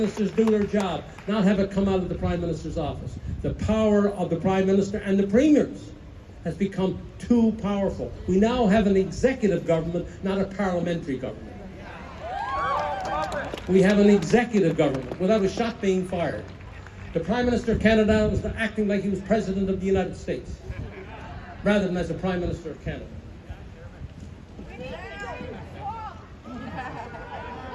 do their job, not have it come out of the Prime Minister's office. The power of the Prime Minister and the premiers has become too powerful. We now have an executive government, not a parliamentary government. We have an executive government without a shot being fired. The Prime Minister of Canada was acting like he was President of the United States, rather than as the Prime Minister of Canada.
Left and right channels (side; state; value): both; identical; correlation 1.00